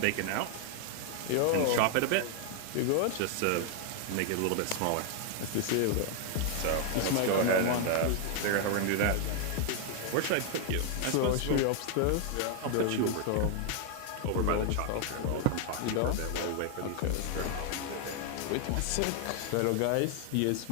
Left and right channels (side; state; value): both; different; correlation 0.00